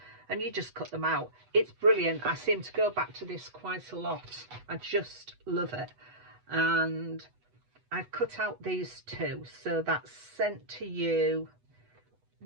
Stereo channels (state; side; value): late; left; 8.1 ms